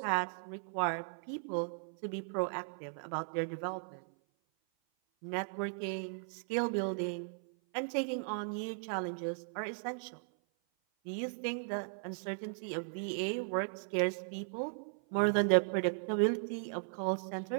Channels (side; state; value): left; silent; 53 dB below the other